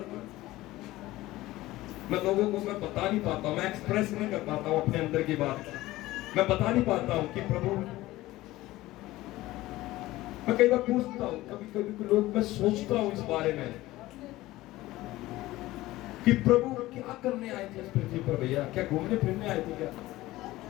मैं लोगों को मैं बता नहीं पाता हूं, मैं एक्सप्रेस नहीं कर पाता हूं अपने अंदर की बात, मैं बता नहीं पाता हूं कि प्रभु, मैं कई बार पूछता हूं, कभी कभी लोग, मैं सोचता हूं इस बारे में कि प्रभु क्या करने आए थे इस पृथ्वी पर भैया? क्या घूमने फिरने आए थे क्या?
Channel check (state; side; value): quieter; right; 17.4 dB